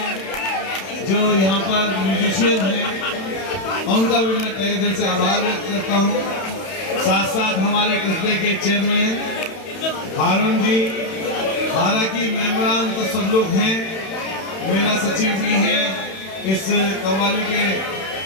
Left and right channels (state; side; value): late; right; 31 ms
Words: जो यहाँ पर म्यूजिशियन हैं, उनका भी मैं तहे दिल से आभार व्यक्त करता हूँ। साथ साथ हमारे कस्बे के चेयरमैन हारून जी, हालांकि मेंबरान तो सब लोग हैं, मेला सचिव भी हैं, इस कव्वाली के